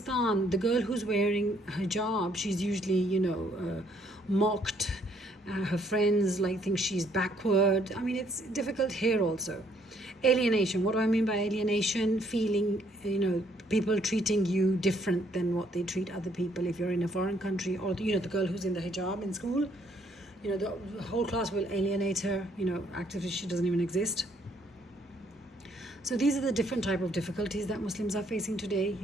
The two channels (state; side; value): normal; both; correlation 0.67